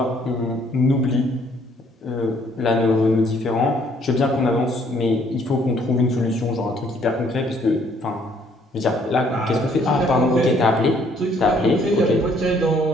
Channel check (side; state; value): both; normal; correlation 0.64